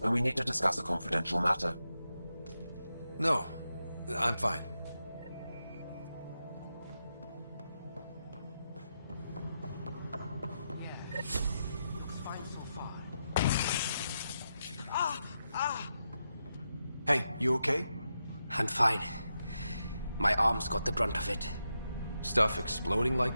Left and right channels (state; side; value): inverted; both; correlation -0.86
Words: we need to discuss a confidential matter. No, I'm fine. Hey, you okay? I'm fine. My arms got the brunt of it. Stuff exploding like